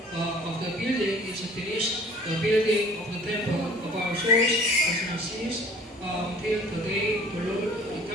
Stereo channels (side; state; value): both; normal; correlation 0.49